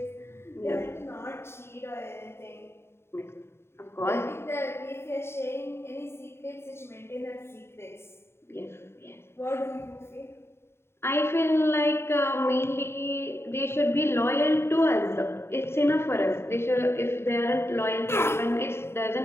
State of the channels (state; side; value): late; right; 0.12 ms